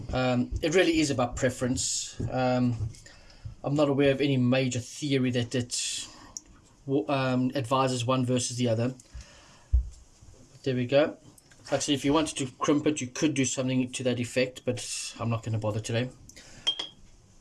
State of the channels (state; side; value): identical; both; correlation 1.00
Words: It really is about preference. I'm not aware of any major theory that advises one versus the other. But there we go. Like I said, if you wanted to crimp it, you could do something to that effect, but I'm not going to bother today.